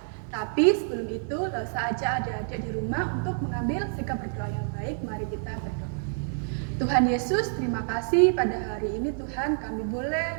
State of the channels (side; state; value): left; silent; 59 dB below the other